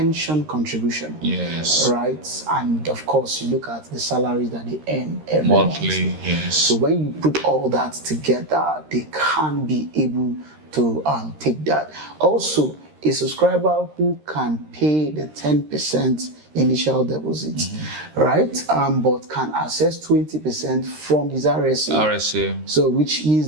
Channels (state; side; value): late; left; 13 ms